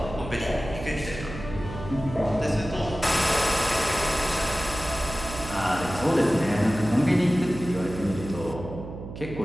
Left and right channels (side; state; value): right; noise; hum, 10 dB below the sound